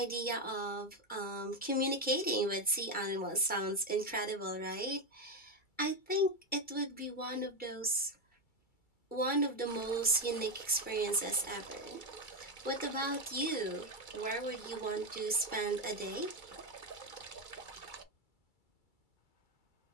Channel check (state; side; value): late; right; 2.3 ms